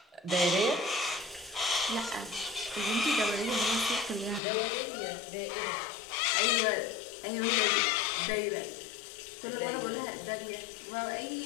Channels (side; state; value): right; drops out; at 4.4 s